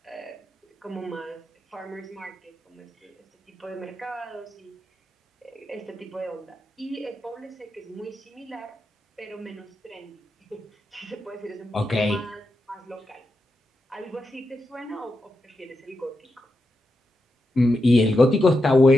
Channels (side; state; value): both; normal; correlation 0.87